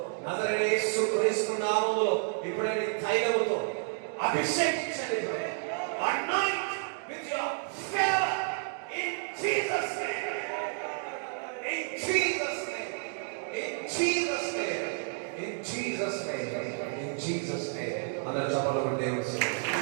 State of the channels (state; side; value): silent; left; 57 dB below the other